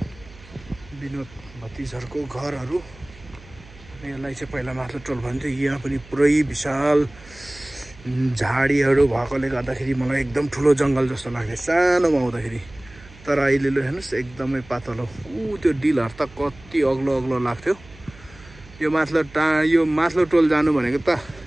विनोद भतिजहरूको घरहरू। यसलाई चाहिँ पहिला माथिल्लो टोल भन्थ्यो। यहाँ पनि पुरै विशाल झाडीहरू भएकोले गर्दाखेरि मलाई एकदम ठुलो जङ्गल जस्तो लाग्थ्यो सानोमा आउँदाखेरि। तर अहिले ल हेर्नुहोस् एकदमै पातलो। त्यो डिलहरू त कति अग्लो अग्लो लाग्थ्यो। यो माथिल्लो टोल जानु भनेको त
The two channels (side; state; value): right; noise; hum, 21 dB below the sound